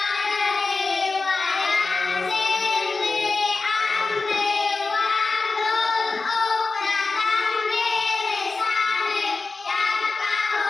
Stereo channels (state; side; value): quieter; right; 3.9 dB